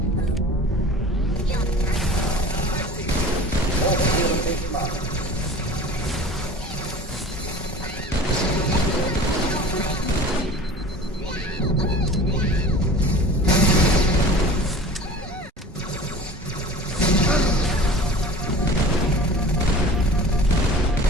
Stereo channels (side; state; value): both; normal; correlation 0.41